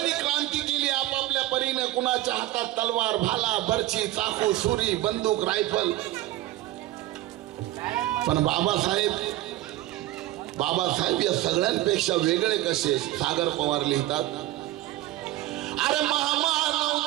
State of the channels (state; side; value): quieter; left; 15.8 dB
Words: क्रांती केली आपापल्या परीने. कुणाच्या हातात तलवार, भाला, बर्ची, चाकू, सुरी, बंदूक, रायफल. पण बाबासाहेब या सगळ्यांपेक्षा वेगळे कसे? सागर पवार लिहितात, अरे महामानव